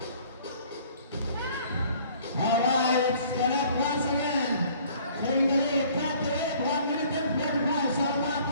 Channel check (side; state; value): both; inverted; correlation -0.55